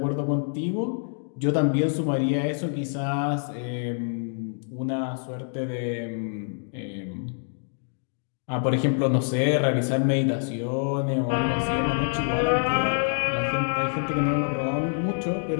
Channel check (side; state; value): right; silent; digital silence